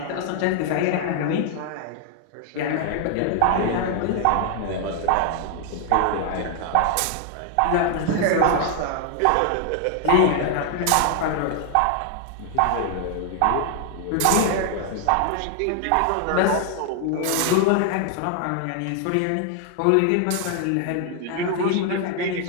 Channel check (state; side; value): different; both; correlation 0.00